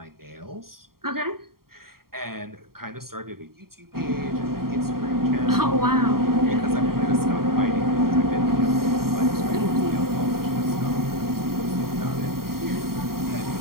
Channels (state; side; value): late; left; 0.93 ms